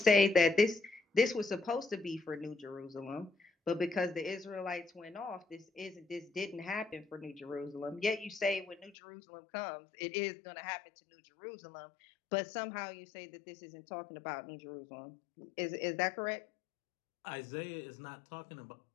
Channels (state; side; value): drops out; right; at 8.9 s